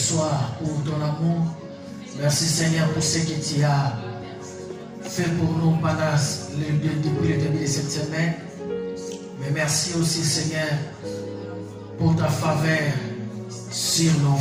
pour ton amour. Merci Seigneur pour ce que tu as fait pour nous pendant depuis le début de cette semaine. Mais merci aussi Seigneur pour ta faveur sur nos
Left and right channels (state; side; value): identical; both; correlation 1.00